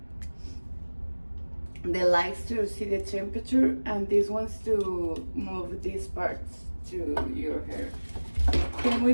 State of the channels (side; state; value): both; inverted; correlation -1.00